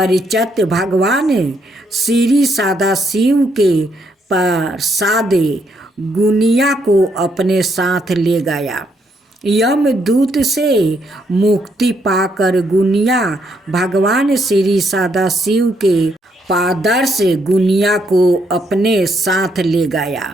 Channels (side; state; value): both; normal; correlation 0.74